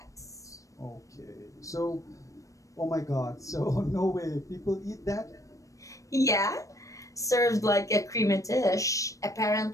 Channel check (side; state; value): right; late; 0.16 ms